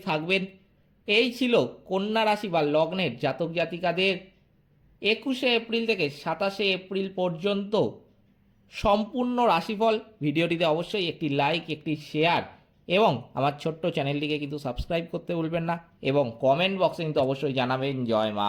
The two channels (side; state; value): both; identical; correlation 1.00